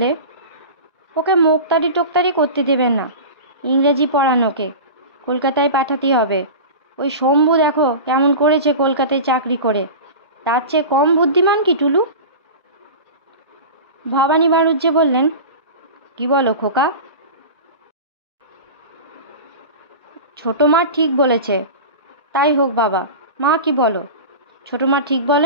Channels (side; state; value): both; inverted; correlation -0.30